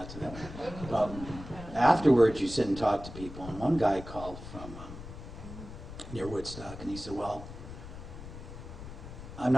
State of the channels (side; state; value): left; noise; rumble, 12 dB below the sound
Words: to that one. But afterwards, you sit and talk to people. And one guy called from near Woodstock, and he said, well, I'm